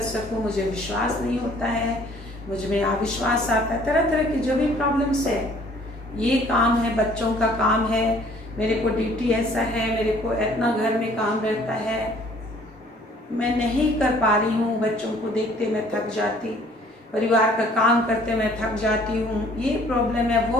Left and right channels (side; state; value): both; normal; correlation 0.56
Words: सकूं, मुझे विश्वास नहीं होता है, मुझ में अविश्वास आता है, तरह तरह की जो भी प्रॉब्लम्स है, ये काम है, बच्चों का काम है, मेरे को ड्यूटी ऐसा है, मेरे को इतना घर में काम रहता है, मैं नहीं कर पा रही हूँ, बच्चों को देखते मैं थक जाती, परिवार का काम करते मैं थक जाती हूँ, ये प्रॉब्लम है,